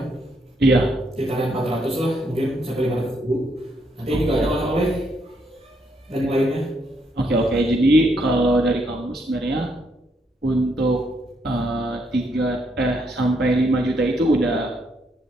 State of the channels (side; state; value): both; normal; correlation 0.74